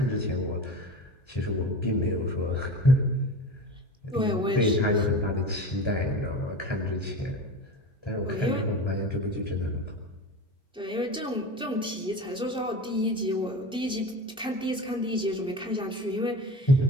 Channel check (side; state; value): both; normal; correlation 0.31